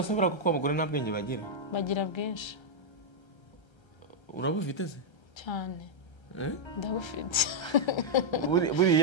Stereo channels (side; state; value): right; late; 1.3 ms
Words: sibura kuko abagore nta bwenge bagira bwinshi. urabufite se cyane? ndabufite.